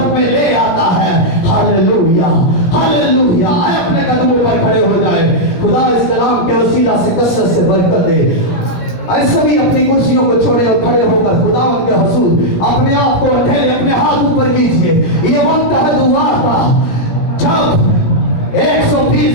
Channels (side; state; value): right; late; 17 ms